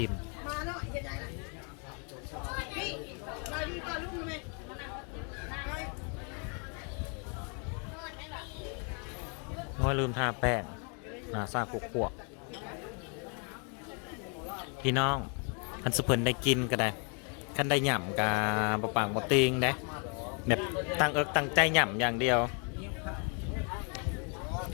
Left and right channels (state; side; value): quieter; right; 38.1 dB